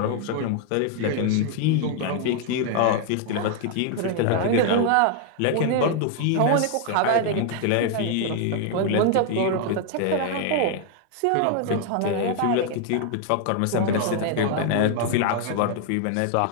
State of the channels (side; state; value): both; different; correlation 0.00